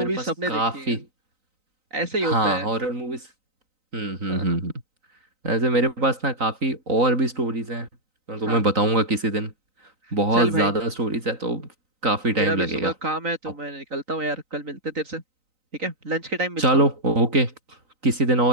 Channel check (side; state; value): left; late; 3.9 ms